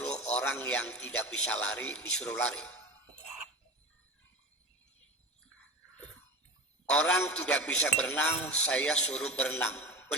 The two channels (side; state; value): both; normal; correlation 0.30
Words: orang yang tidak bisa lari disuruh lari? Orang tidak bisa berenang, saya suruh berenang.